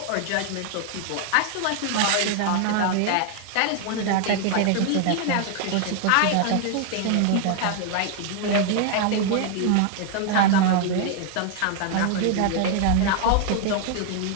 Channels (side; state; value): both; different; correlation 0.00